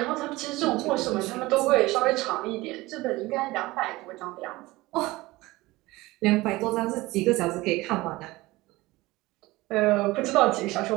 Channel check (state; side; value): quieter; left; 19.9 dB